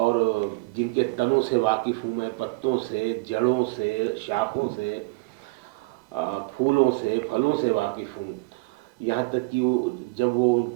जिनके तनों से वाकिफ़ हूँ मैं, पत्तों से, जड़ों से, शाखों से, फूलों से, फलों से वाकिफ़ हूँ। यहाँ तक कि वो जब वो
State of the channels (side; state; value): left; quieter; 25.2 dB